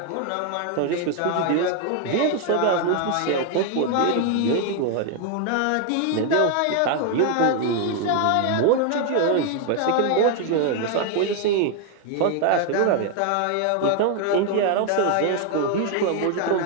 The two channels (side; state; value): both; different; correlation 0.00